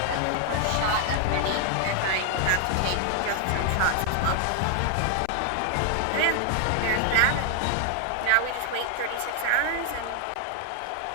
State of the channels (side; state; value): both; different; correlation 0.00